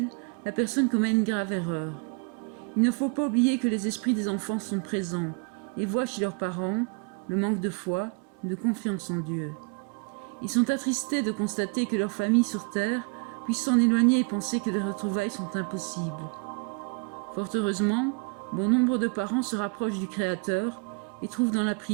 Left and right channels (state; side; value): quieter; left; 35.1 dB